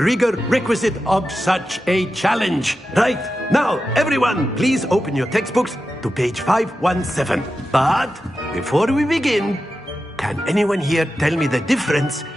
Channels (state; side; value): normal; both; correlation 0.91